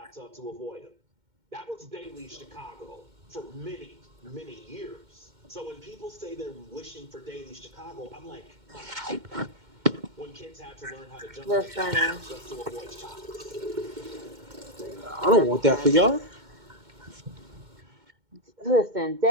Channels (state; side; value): late; left; 2.1 ms